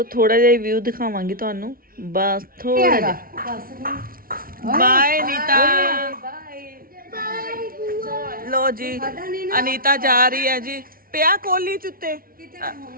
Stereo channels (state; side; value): late; left; 0.42 ms